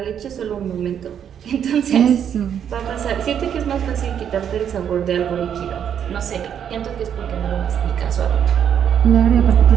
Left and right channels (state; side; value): quieter; left; 8.7 dB